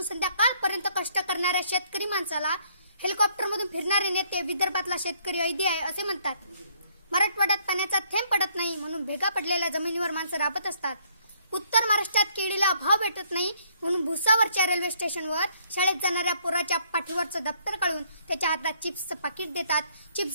संध्याकाळपर्यंत कष्ट करणाऱ्या शेतकरी माणसाला हेलिकॉप्टरमधून फिरणारे नेते विदर्भातला शेतकरी ऐदी आहे असे म्हणतात। मराठवाड्यात पाण्याचा थेंब पडत नाही म्हणून भेगा पडलेल्या जमिनीवर माणसं राबत असतात। उत्तर महाराष्ट्रात केळीला भाव भेटत नाही म्हणून भुसावरच्या रेल्वे स्टेशनवर शाळेत जाणाऱ्या पोराच्या पाठीवरचं दप्तर काढून त्याच्या हातात चिप्सचं पाकिट देतात।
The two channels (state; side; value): inverted; both; correlation -0.66